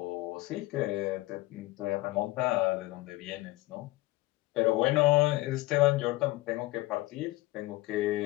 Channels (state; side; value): quieter; right; 19.3 dB